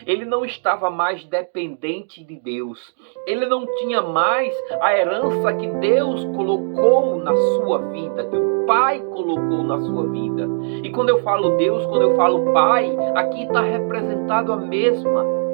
Ele não estava mais dependente de Deus. Ele não tinha mais a herança que Deus colocou na sua vida, que o Pai colocou na sua vida. E quando eu falo Deus, quando eu falo Pai, aqui está representado a mesma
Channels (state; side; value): silent; left; 66 dB below the other